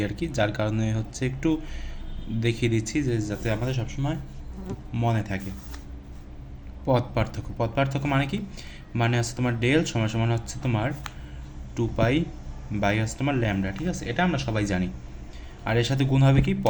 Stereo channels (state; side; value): identical; both; correlation 1.00